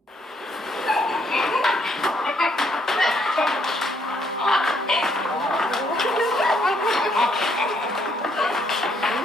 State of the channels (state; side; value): normal; both; correlation 0.70